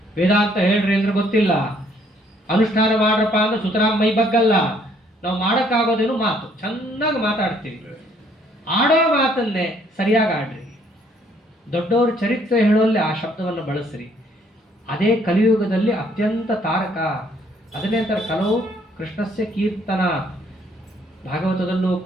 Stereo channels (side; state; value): both; normal; correlation 0.64